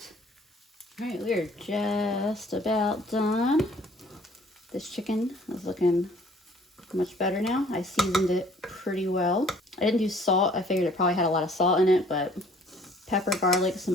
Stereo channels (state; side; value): normal; both; correlation 0.56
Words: All right, we are just about done. This chicken is looking much better now. I seasoned it pretty well. I didn't do salt. I figured it probably had a lot of salt in it, but pepper, garlic,